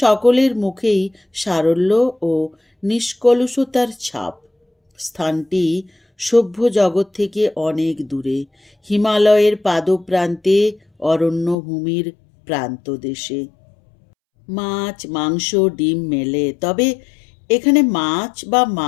মুখেই সারল্য ও নিষ্কলুষতার ছাপ। স্থানটি সভ্য জগৎ থেকে অনেক দূরে, হিমালয়ের পাদপ্রান্তে, অরণ্যভূমির প্রান্তদেশে। মাছ, মাংস, ডিম মেলে, তবে এখানে মাছ বা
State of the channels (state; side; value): drops out; right; at 11.6 s